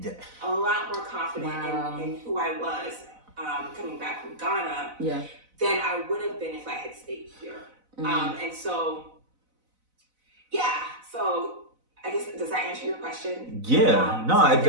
Yeah. A lot more confident in who I was coming back from Ghana than I would have been if I had stayed here. And so, so I guess, does that answer your question? Yeah, no, it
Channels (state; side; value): late; left; 4.0 ms